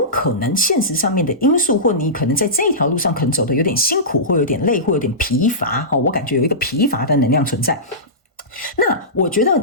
可能现实上面的因素，或你可能在这一条路上可能走得有点辛苦，或有点累，或有点疲乏我感觉有一个疲乏的能量存在。那我觉得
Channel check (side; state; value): both; normal; correlation -0.19